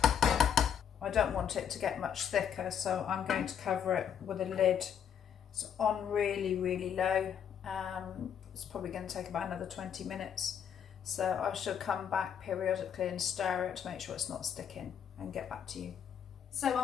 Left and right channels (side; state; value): right; quieter; 8.4 dB